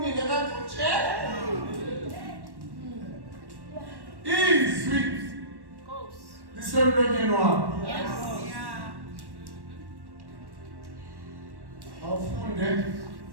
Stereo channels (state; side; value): late; left; 1.1 ms